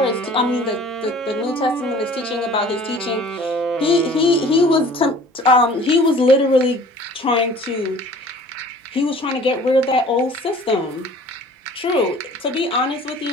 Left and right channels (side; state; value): both; normal; correlation 0.48